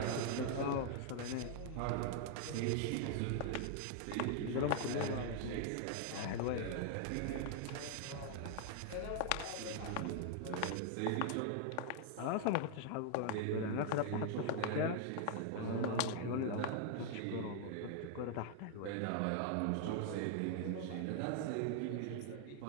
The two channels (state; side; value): different; both; correlation 0.00